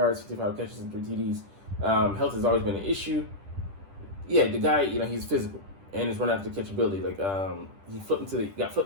55 catches, and 3 TDs. Health has always been an issue. Yeah, the guy, he's physical and his run after catchability. Like he got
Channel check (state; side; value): late; left; 10 ms